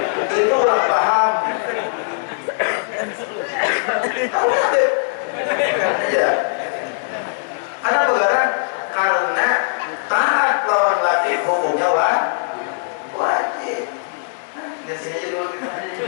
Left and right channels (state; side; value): silent; right; 66 dB below the other